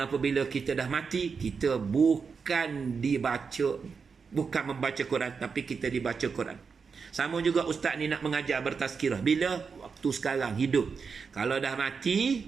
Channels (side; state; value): left; quieter; 5.5 dB